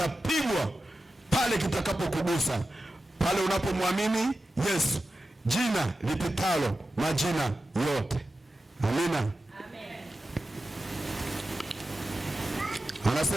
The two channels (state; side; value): normal; both; correlation 0.92